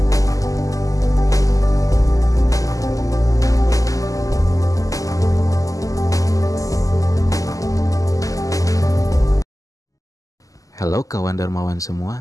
Halo kawan Dermawan semua,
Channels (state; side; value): late; right; 0.17 ms